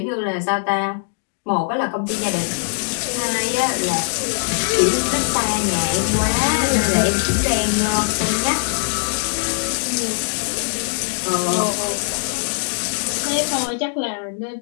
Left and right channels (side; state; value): right; silent; digital silence